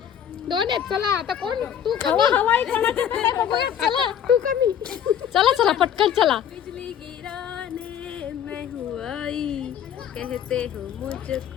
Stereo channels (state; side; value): quieter; right; 9.1 dB